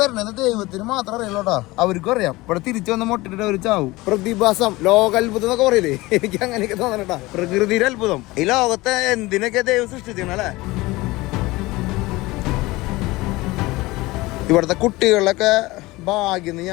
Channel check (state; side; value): quieter; right; 20.6 dB